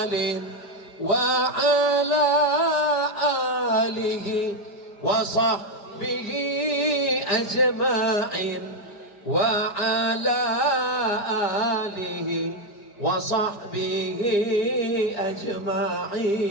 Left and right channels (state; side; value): late; right; 5.0 ms